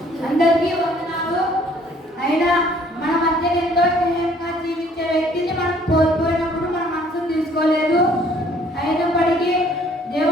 అందరికీ వందనాలు. అయినా మన మధ్య ఎంతో స్నేహంగా జీవించే వ్యక్తిని మనం కోల్పోయినప్పుడు మన మనసును తీసుకోలేదు. అయినప్పటికీ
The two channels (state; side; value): normal; both; correlation 0.59